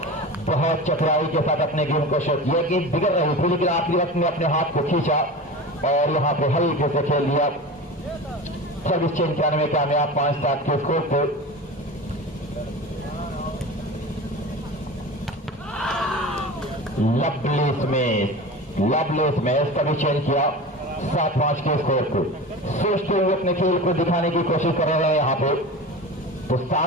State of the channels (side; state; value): both; normal; correlation 0.31